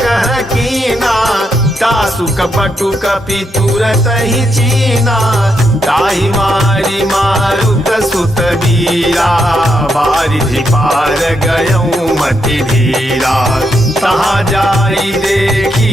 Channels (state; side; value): normal; both; correlation 0.80